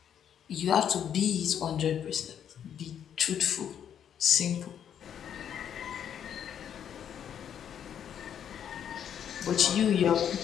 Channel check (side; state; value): right; quieter; 9.0 dB